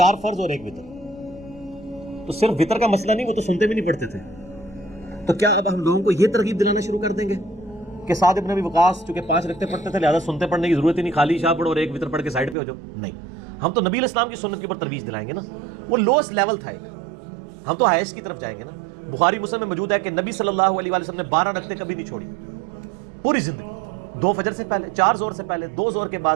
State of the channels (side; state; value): left; drops out; at 12.6 s